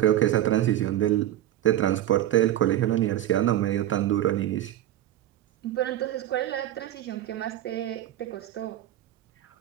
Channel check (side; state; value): left; quieter; 12.6 dB